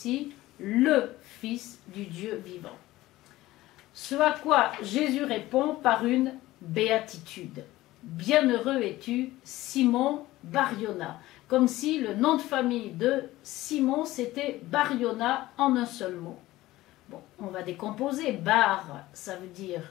le Fils du Dieu vivant. Ce à quoi Jésus répond par une béatitude. Bienheureux es-tu, Simon Bar-Yona. Comme si le nom de famille de Simon, c'était Bar-Yona en un seul mot. Bon, on va décomposer. Bar, ça veut dire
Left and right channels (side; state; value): right; quieter; 17.0 dB